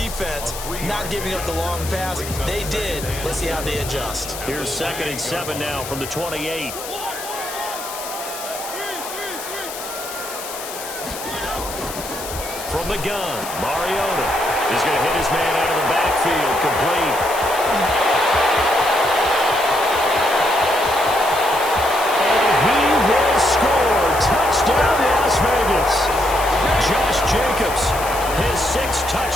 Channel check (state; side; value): noise; left; hiss, 10 dB below the sound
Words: not giving up the long pass. They did. Let's see how they adjust. Here's 2nd and 7 now from the 28. From the gun, Mariota is going to hit his man out of the backfield, complete. Touchdown, Las Vegas. Josh Jacobs, his 6th